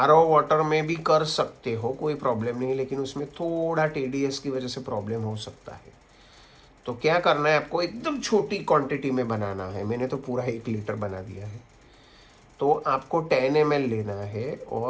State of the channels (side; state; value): both; identical; correlation 1.00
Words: वाटर में भी कर सकते हो, कोई प्रॉब्लम नहीं है, लेकिन उसमें थोड़ा TDS की वजह से प्रॉब्लम हो सकता है। तो क्या करना है आपको, एकदम छोटी क्वांटिटी में बनाना है। मैंने तो पूरा 1 लीटर बना दिया है। तो आपको 10 ml लेना है